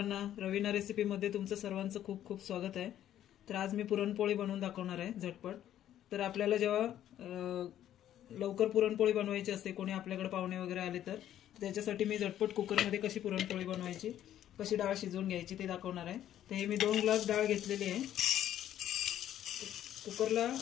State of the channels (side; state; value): right; quieter; 11.5 dB